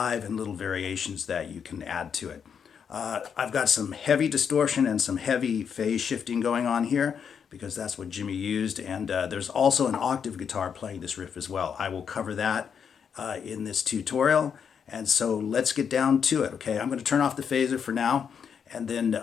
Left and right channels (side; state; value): right; quieter; 7.2 dB